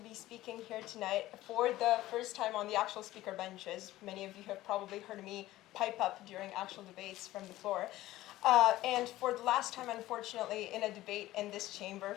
speaking here tonight for the first time on the actual speaker benches. Many of you have probably heard me pipe up during actual debates from the floor. And for the last time, unfortunately, in a debate in this chamber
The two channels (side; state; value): right; quieter; 16.0 dB